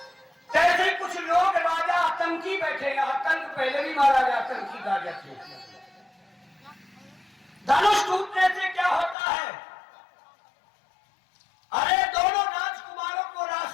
तैसे ही कुछ लोग राजा आतंकी बैठे। आतंक पहले भी महाराज आतंकी राजा थे। धनुष टूटने से क्या होता है? अरे दोनों राजकुमारों को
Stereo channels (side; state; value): right; drops out; at 9.2 s